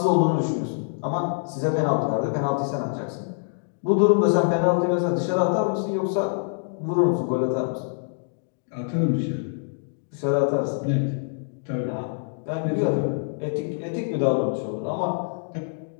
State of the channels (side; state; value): right; silent; digital silence